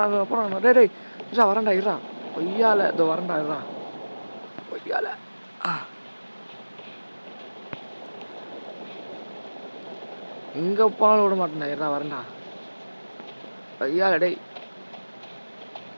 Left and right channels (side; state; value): both; inverted; correlation -1.00